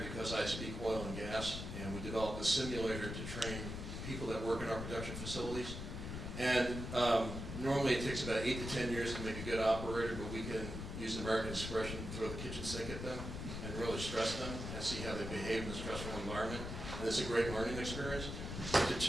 because I speak oil and gas, and we developed a simulator to train people that work in our production facilities. And normally it takes about 8 to 10 years to make a good operator, but we can use the American expression, throw the kitchen sink at them and really stress them and see how they behave in a stressful environment. And it's a great learning experience. To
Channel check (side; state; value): left; noise; rumble, 6 dB below the sound